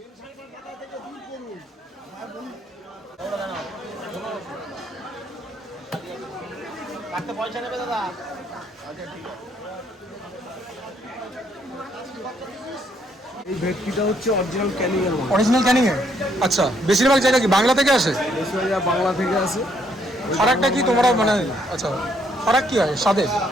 কাটতে পয়সা নেবে দাদা? এই ভেটকিটা হচ্ছে অরিজিনাল ক্যানিং এর মাল। অরিজিনাল ক্যানিং এর? আচ্ছা, বেশিরভাগ জায়গা কি বাংলা থেকে আসে? বেশিরভাগ বাংলা থেকে আসে। ফারাকটা কি তোমরা মানে, আচ্ছা ফারাক কি হয় স্বাদে?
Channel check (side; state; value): both; normal; correlation 0.70